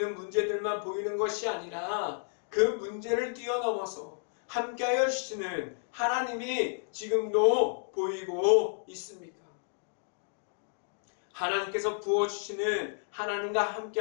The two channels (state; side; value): silent; right; digital silence